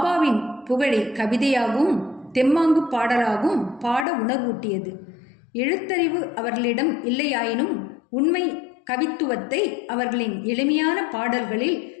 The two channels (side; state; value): right; drops out; at 4.0 s